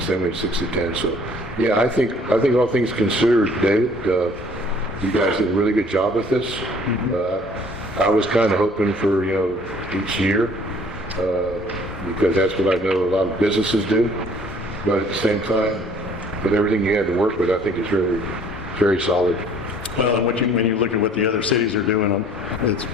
same way 6 to 10, so, yeah, I think all things considered, David, you guys did a really good job with this. I was kind of hoping for, each year, because that's what I know a lot of businesses do. But at the same time, with everything you had to work with, I think it's really very solid. Well, and when you look at what the other cities are doing,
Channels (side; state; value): both; normal; correlation 0.55